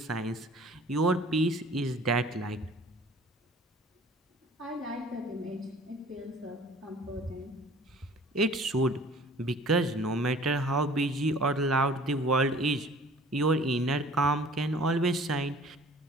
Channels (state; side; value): normal; both; correlation 0.50